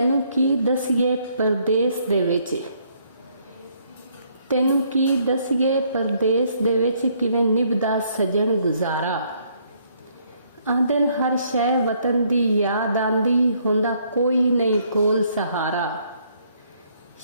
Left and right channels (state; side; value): inverted; both; correlation -0.68